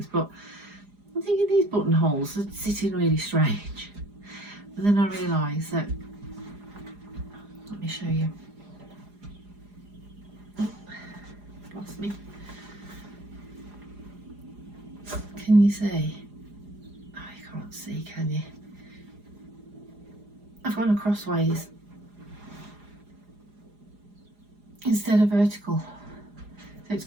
but I'm thinking these buttonholes are sitting really strange. And then I realised that, let me show you. Oh, lost me. Can you see? Oh, you can't see, can you? I've gone crossways instead of vertical, so it's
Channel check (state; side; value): late; left; 4.9 ms